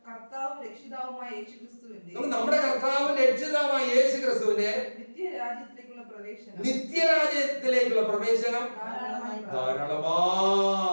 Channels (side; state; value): both; inverted; correlation -1.00